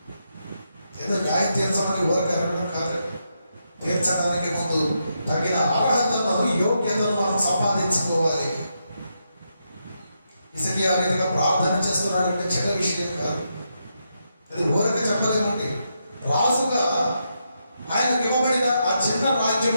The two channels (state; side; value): inverted; both; correlation -0.82